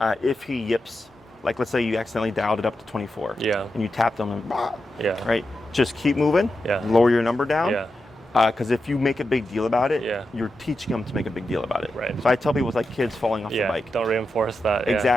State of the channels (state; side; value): normal; both; correlation 0.89